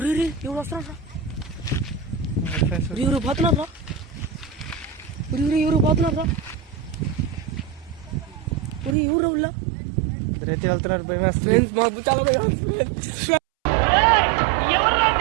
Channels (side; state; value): left; drops out; at 9.0 s